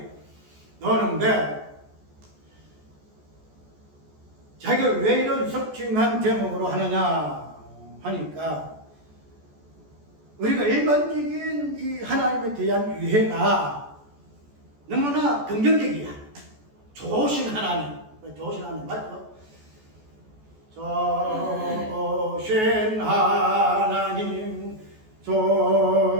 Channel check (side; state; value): left; late; 14 ms